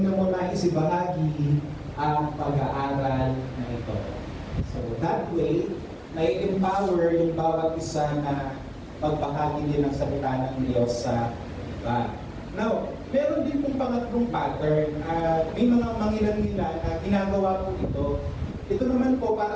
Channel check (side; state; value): both; identical; correlation 1.00